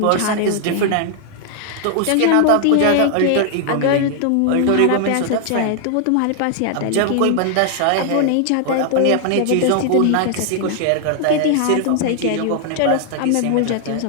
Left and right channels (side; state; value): both; different; correlation 0.00